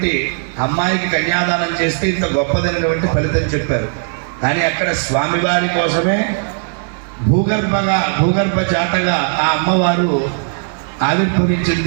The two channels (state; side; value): silent; left; 63 dB below the other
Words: అమ్మాయికి కన్యాదానం చేస్తే ఇంత గొప్పదైనటువంటి ఫలితం చెప్పారు. కానీ అక్కడ స్వామివారి కోసమే భూగర్భ జాతగా ఆ అమ్మవారు